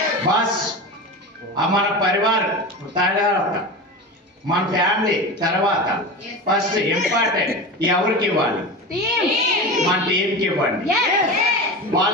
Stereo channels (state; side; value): normal; both; correlation 0.26